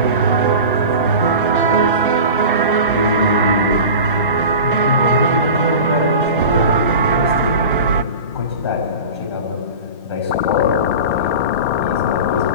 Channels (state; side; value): inverted; both; correlation -0.34